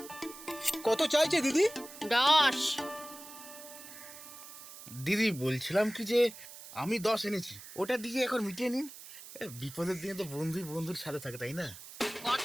কত চাইছে দিদি? 10। দিদি, বলছিলাম কি যে আমি 10 এনেছি, ওটা দিয়ে এখন মিটিয়ে নিন। বিপদের দিনে তো বন্ধুই বন্ধুর সাথে থাকে, তাই না?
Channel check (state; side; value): noise; right; hiss, 15 dB below the sound